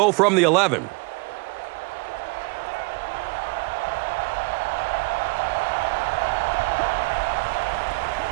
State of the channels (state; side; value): quieter; left; 29.2 dB